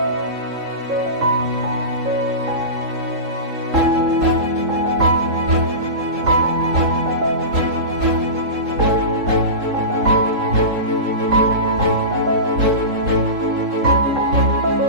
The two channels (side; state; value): left; late; 3.7 ms